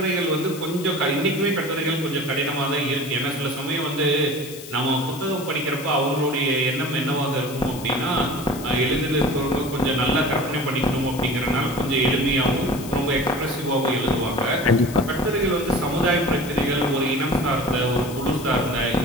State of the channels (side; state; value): left; noise; hiss, 14 dB below the sound